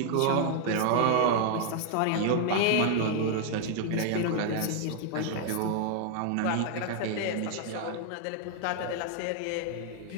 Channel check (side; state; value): both; different; correlation 0.00